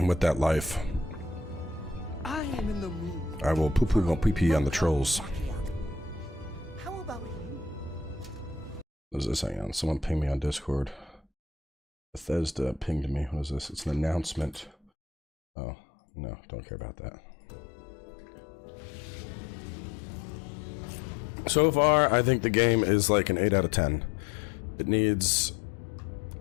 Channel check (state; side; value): drops out; right; at 14.8 s